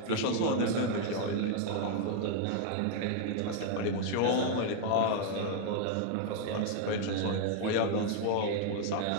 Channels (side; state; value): both; different; correlation 0.00